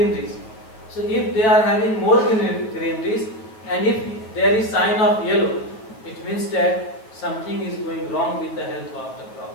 So if they are having more greeneries and if there is sign of yellow, it means that something is going wrong with the health of the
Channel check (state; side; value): late; right; 9.0 ms